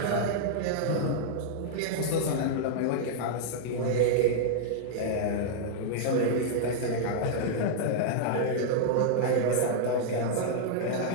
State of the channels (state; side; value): different; both; correlation -0.01